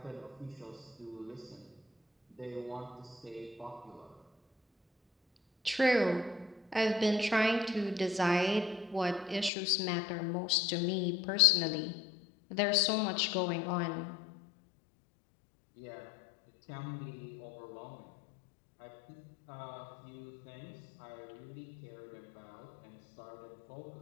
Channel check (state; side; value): drops out; right; at 9.5 s